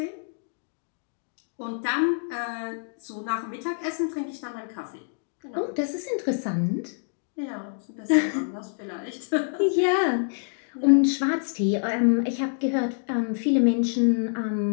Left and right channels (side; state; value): right; silent; digital silence